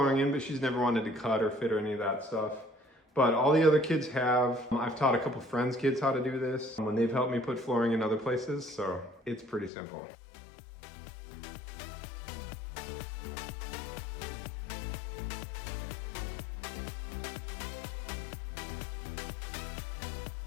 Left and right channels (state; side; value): drops out; right; at 9.7 s